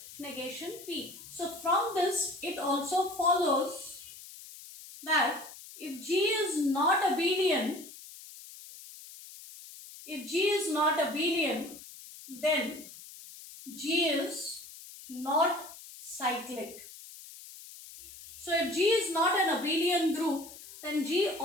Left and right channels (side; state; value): left; noise; hiss, 16 dB below the sound